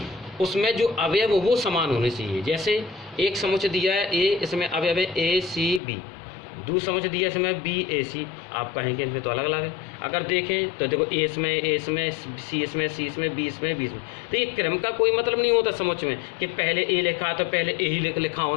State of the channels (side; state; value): right; drops out; at 5.8 s